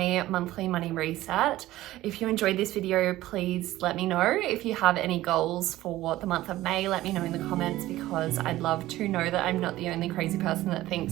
monthly money reset. If you enjoyed this video, please let me know. If you have any goals for the month of May, let me know in the comments, because I'd love to know that I'm not the only crazy person that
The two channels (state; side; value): quieter; left; 15.9 dB